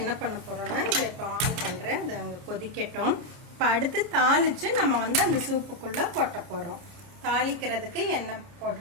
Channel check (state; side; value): late; left; 29 ms